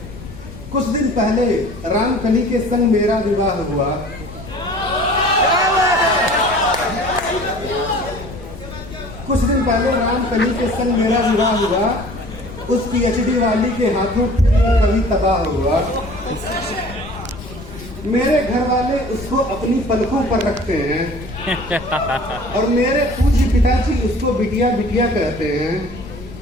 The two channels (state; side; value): noise; left; rumble, 14 dB below the sound